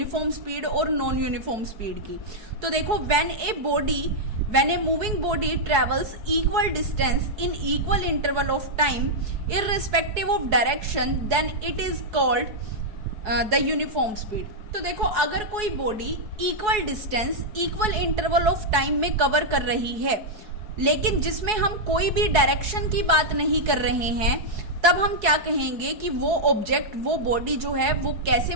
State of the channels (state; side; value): late; left; 4.7 ms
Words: स्पीड और नॉन यूनिफॉर्म स्पीड की। तो देखो when a moving body travels equal distance in equal interval of time irrespective of direction, then it is called the uniform speed. तो देखो अगर कोई body equal distance equal interval of time में cover कर रही है लेकिन जिसमें हम कोई भी डायरेक्शन की बात नहीं कर रहे हैं, तब हम क्या कहेंगे कि वो ऑब्जेक्ट, वो बॉडी जो है वो कैसे